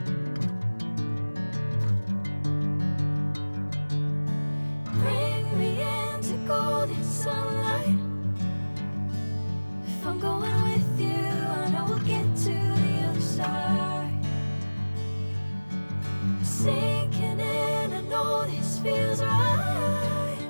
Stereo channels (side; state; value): both; inverted; correlation -1.00